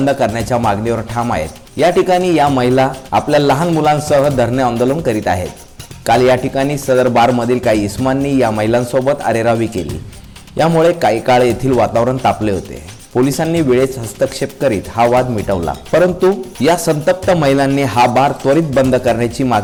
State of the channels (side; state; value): both; identical; correlation 1.00